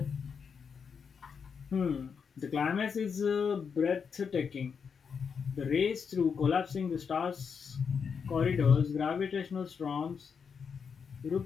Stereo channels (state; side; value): quieter; right; 6.3 dB